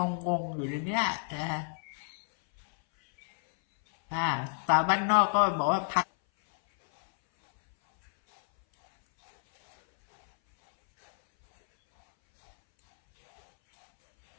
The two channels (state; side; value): silent; right; 59 dB below the other